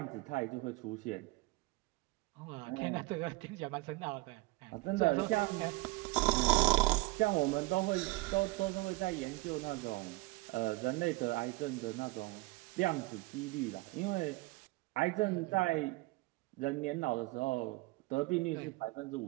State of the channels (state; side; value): quieter; left; 22.4 dB